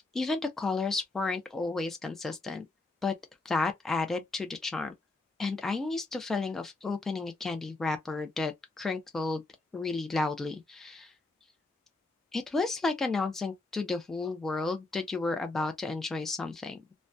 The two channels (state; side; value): quieter; right; 3.2 dB